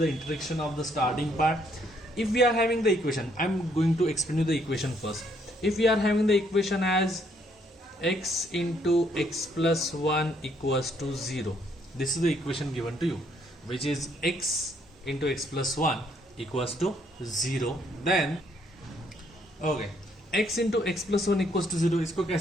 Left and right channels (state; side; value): normal; both; correlation 0.69